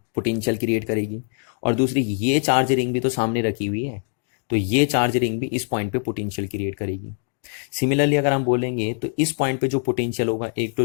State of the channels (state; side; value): silent; right; 62 dB below the other